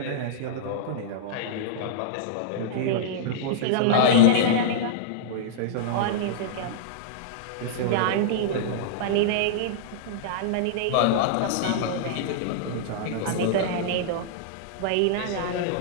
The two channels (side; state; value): both; different; correlation -0.02